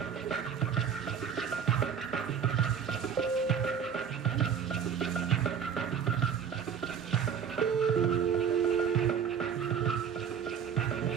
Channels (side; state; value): left; quieter; 7.5 dB